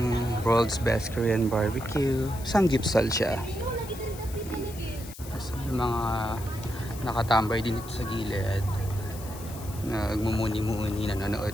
World's Best Korean Barbecue. Samgyeopsal siya. So, yung mga nakatambay din dito sa gilid. Nagmumuni-muni,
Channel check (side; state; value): left; noise; hiss, 16 dB below the sound